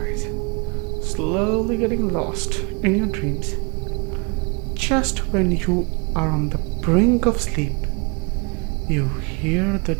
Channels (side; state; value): left; quieter; 32.3 dB